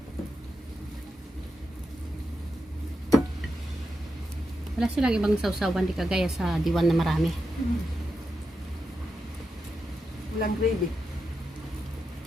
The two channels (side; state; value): both; normal; correlation 0.87